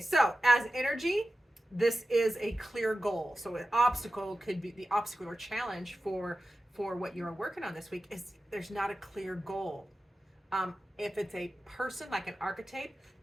as energy, this is a clear goal. So an obstacle could be the obstacle or challenge for what you're working on this week is there's not a clear goal. If it's a person, like an archetype,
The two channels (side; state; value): both; normal; correlation 0.93